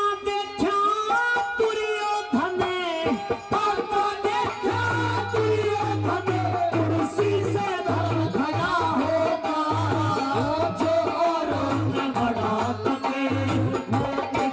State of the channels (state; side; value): identical; both; correlation 1.00